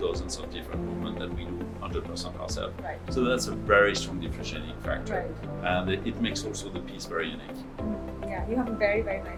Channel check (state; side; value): identical; both; correlation 1.00